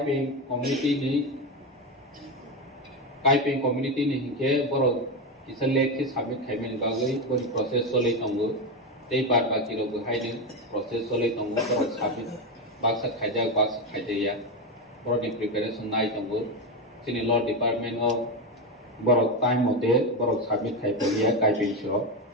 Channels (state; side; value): normal; both; correlation 0.13